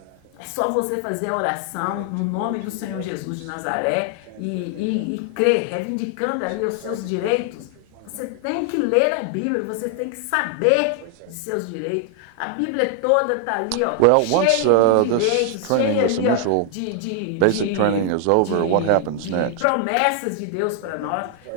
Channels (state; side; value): different; both; correlation 0.00